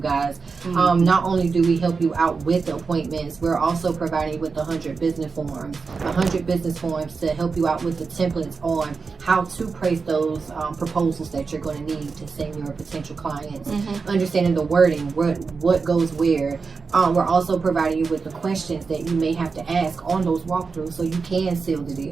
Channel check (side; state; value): left; quieter; 4.8 dB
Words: Not only do we help you out with the appointments, we're also providing you with 100 business forms. 100 business forms to help you out with the templates on how to place those proposals that you're going to need to send your potential clients. Understanding the wording, what goes where. We're also providing you with the questions that you may have to ask on those walkthroughs so you can seal the